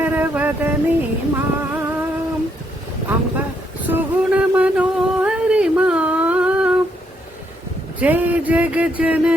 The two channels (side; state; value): both; normal; correlation 0.74